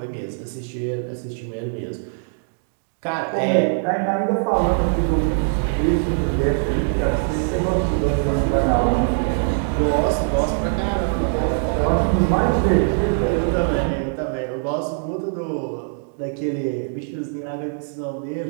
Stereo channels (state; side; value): silent; left; digital silence